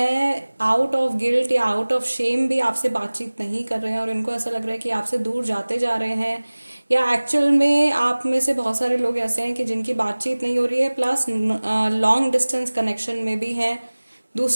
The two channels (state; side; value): inverted; both; correlation -1.00